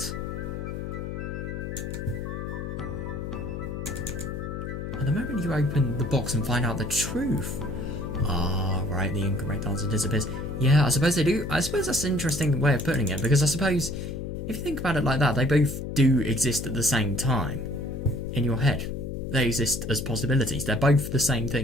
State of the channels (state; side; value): noise; left; hum, 6 dB below the sound